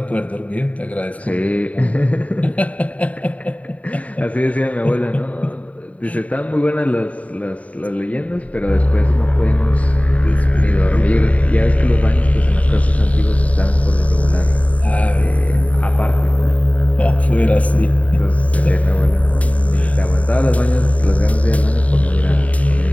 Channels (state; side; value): late; right; 0.068 ms